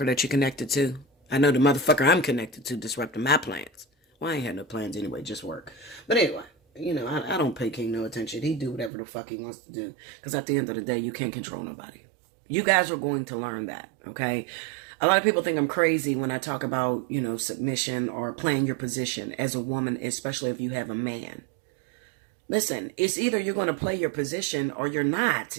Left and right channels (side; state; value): left; drops out; at 8.9 s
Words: that you're connected to. I know the motherfucker I'm connected to disrupted my plans. Well, I ain't had no plans anyway, just work. But anyway, I don't pay King no attention. He do whatever the fuck he wants to do. Because at the end of the day, you can't control nobody. You guys are going to learn that, okay? A lot of people think I'm crazy when I talk about, submission or playing your position as a woman, especially if you have a man. Listen, it's either you're going to play your position or you're not.